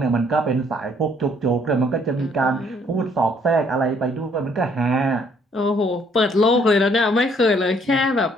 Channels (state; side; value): normal; both; correlation 0.65